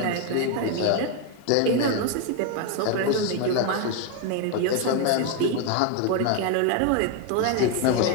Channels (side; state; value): both; different; correlation 0.01